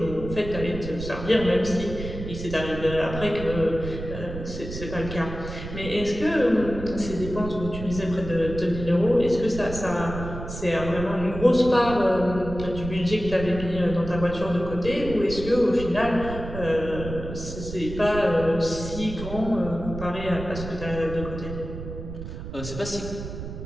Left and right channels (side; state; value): right; noise; rumble, 9 dB below the sound